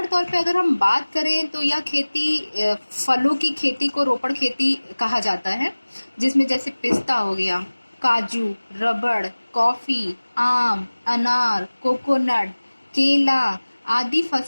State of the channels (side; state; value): both; inverted; correlation -1.00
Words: तौर पे अगर हम बात करें तो यह खेती फलों की खेती को रोपड़ खेती कहा जाता है, जिसमें जैसे पिस्ता हो गया, काजू, रबड़, कॉफी, आम, अनार, कोकोनट, केला आदि